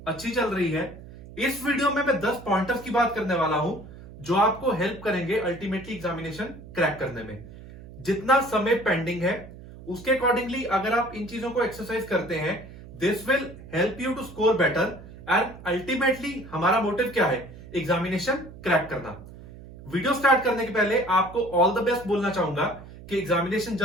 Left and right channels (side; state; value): right; noise; hum, 17 dB below the sound